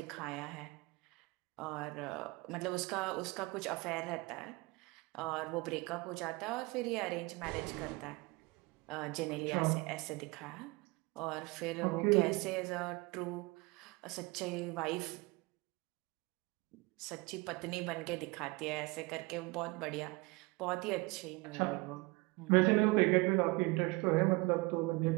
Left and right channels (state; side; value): quieter; left; 24.7 dB